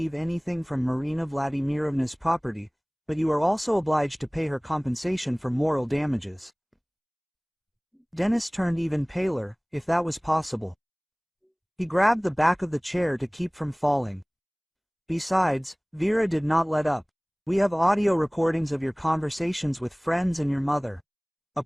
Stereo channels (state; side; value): identical; both; correlation 1.00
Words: anything from Marina Vladimirovna's property, but you are also obliged to pay her compensation for moral damages. Denis turned even paler, if that was possible. He grabbed the back of the chair to keep from falling. Besides, Vera did not let up. We have audio recordings of your conversations with friends and your mother. A